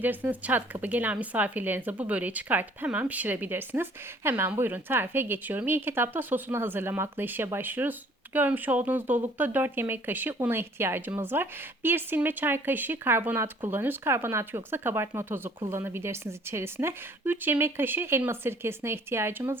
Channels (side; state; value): both; normal; correlation 0.56